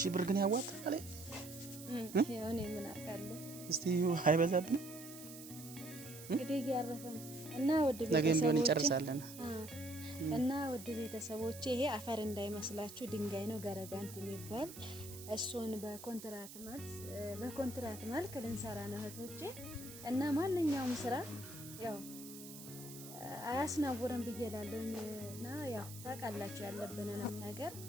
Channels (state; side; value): noise; right; hiss, 14 dB below the sound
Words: ብር ግን ያዋጣል። ያው እኔ ምን አውቃለሁ። እስቲ አይበዛብንም እንግዲህ ያረፈን እና ወድ ቤተሰቦች ነገም ቢሆን እንጨርሳለን እና ወድ ቤተሰቦች ይሄ አፈር እንዳይመስላችሁ ድንጋይ ነው ገረጋንቲ የሚባል እሱን በኮንትራት መልክ ልንሰራ ነው እህቶቼ። እና ማንኛውም ስራ ያው አያስናውርም ብዬላለሁና ያው ታውቃላችሁ ያለብንን ነገር